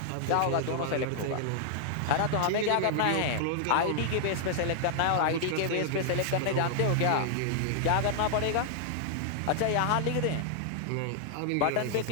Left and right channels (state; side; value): different; both; correlation -0.01